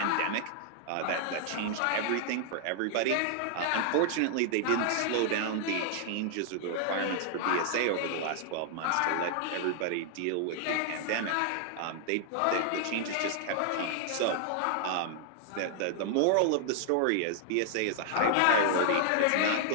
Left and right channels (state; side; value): different; both; correlation -0.01